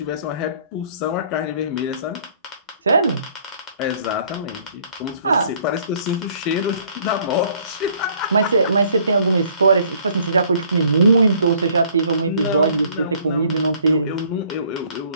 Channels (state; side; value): inverted; both; correlation -0.59